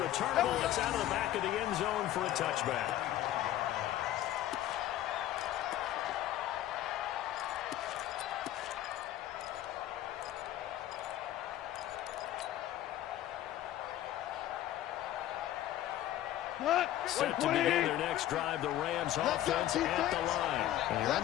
returnable. It's out of the back of the end zone for a touchback. Set to begin their next drive, the Rams offense at the line. And you're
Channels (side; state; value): right; quieter; 13.2 dB